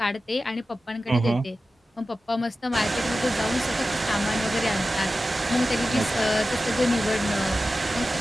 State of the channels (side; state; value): both; normal; correlation 0.94